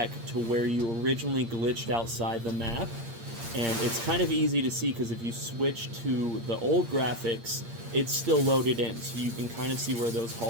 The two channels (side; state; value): left; late; 8.7 ms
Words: to where you originally glitched outside the map. And it's kind of easy to see because if you switch to the old graphics, it's still loaded in, so you can kind of see where those